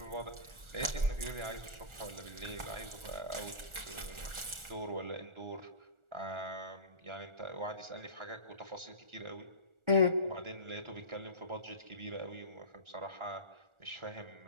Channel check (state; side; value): late; left; 1.4 ms